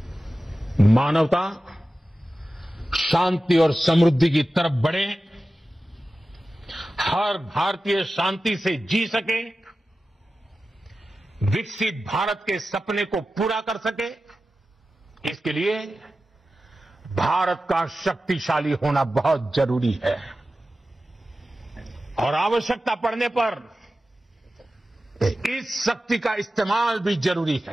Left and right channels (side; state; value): both; normal; correlation 0.94